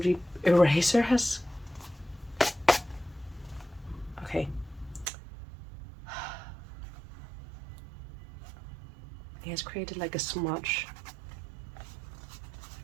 eraser has... Okay. It has created like a smudge.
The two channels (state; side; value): drops out; left; at 5.1 s